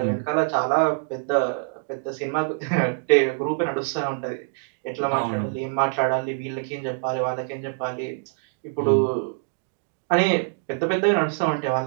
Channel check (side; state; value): left; silent; digital silence